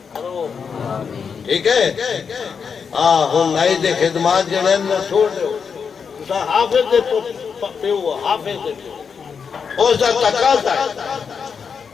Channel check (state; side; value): quieter; right; 6.2 dB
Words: کرو ٹھیک ہے ہن نائی دے خدمات جنہیں نہ چھوڑ دے اسا حافظ دے پہ ہوا حافظ دے پہ اس دا تقاضا ہے